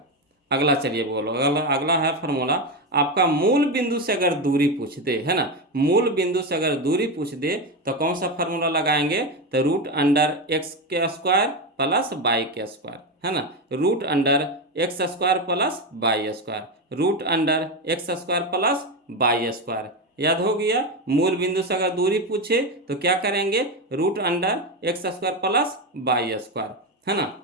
अगला चलिए बोलो, अगला है फार्मूला, आपका मूल बिंदु से अगर दूरी पूछ दे, है ना, मूल बिंदु से अगर दूरी पूछ दे तो कौन सा फार्मूला लगाएंगे, तो रूट अंडर एक्स के स्क्वायर प्लस वाई के स्क्वायर, है ना, root under x square plus y square, root under x square plus y square. याद हो गया। मूल बिंदु से अगर दूरी पूछे तो क्या करेंगे, root under x square plus y square, है ना।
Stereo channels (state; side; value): normal; both; correlation 0.14